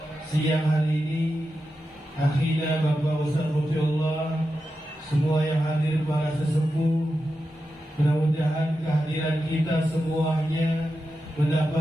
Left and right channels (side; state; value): both; normal; correlation 0.90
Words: siang hari ini, akhirnya Bapak Ustaz Mufiullah, semua yang hadir para sesepuh, mudah-mudahan kehadiran kita semuanya